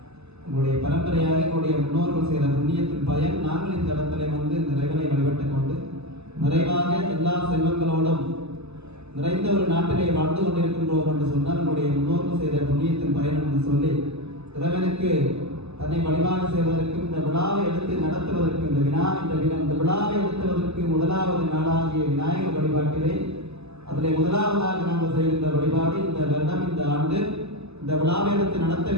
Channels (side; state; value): left; late; 0.79 ms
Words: உங்களுடைய பரம்பரையாக எங்களுடைய முன்னோர்கள் செய்த புண்ணியத்தின் பயன் நாங்கள் இந்த இடத்துல வந்து இந்த இறைவனை வழிபட்டுக் கொண்டு நிறைவாக எல்லா செல்வங்களோடும் நிறைந்த ஒரு நாட்டிலே வாழ்ந்து கொண்டிருக்கின்றோம் என்று சொன்னால் நம்முடைய முன்னோர்கள் செய்த புண்ணியத்தின் பயன் என்று சொல்லி இறைவனுக்கு தன்னை வழிபாடு செய்வதற்கும் இந்த விழாவை எடுத்து நடத்துவதற்கு இந்த விழாவை எடுத்துவதற்கு முதலாவது நாளாகிய விநாயகர் வழிபாட்டிலே அதிலே முதலாவதாக நாங்கள் செய்கின்ற வழிபாடு இந்த வருடம் இந்த ஆண்டு இந்த விழாவை எடுத்து நடத்த